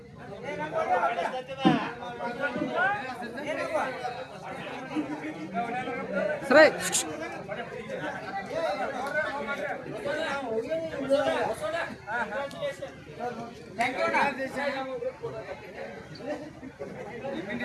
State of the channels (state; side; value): identical; both; correlation 1.00